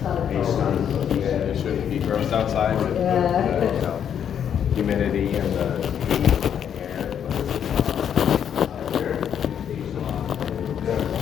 It shouldn't be gross outside with humidity and the air.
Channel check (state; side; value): quieter; right; 8.7 dB